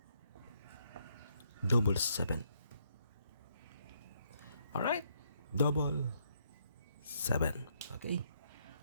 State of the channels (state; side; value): inverted; both; correlation -0.73